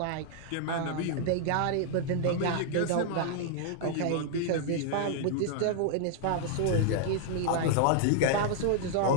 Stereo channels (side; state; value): both; different; correlation 0.00